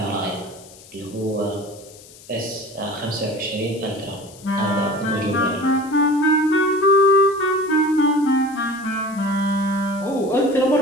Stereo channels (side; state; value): left; noise; hiss, 21 dB below the sound